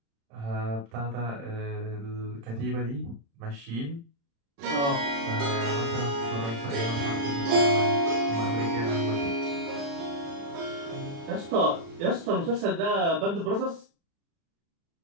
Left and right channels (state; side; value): late; left; 35 ms